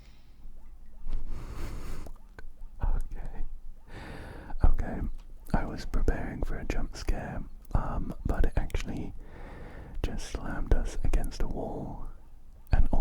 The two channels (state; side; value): identical; both; correlation 1.00